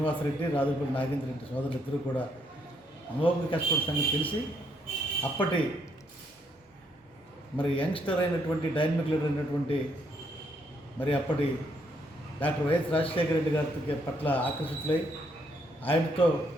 రాజులపల్లి నాగేంద్ర రెడ్డి సోదరులు ఇద్దరు కూడా అమోఘంగా కష్టపడే సంగతి తెలిసి అప్పటి మరి యంగ్స్టర్ అయినటువంటి డైనమిక్ లీడర్ అయినటువంటి మరి అప్పటి డాక్టర్ వైఎస్ రాజశేఖర రెడ్డి గారి పట్ల ఆకర్షితులై ఆయనతో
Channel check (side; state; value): both; normal; correlation 0.72